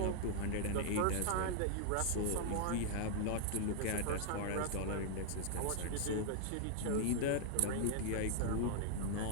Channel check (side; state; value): both; different; correlation 0.00